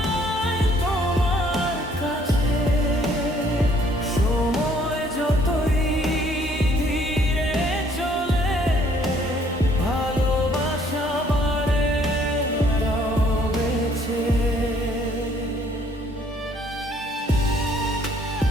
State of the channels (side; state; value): both; normal; correlation 0.62